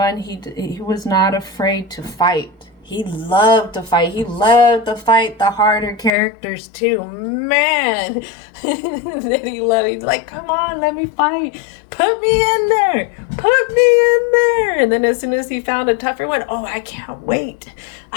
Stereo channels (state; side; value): drops out; right; at 6.1 s